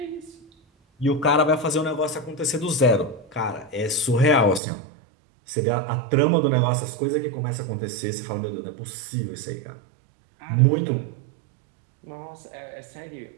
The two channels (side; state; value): left; drops out; at 4.6 s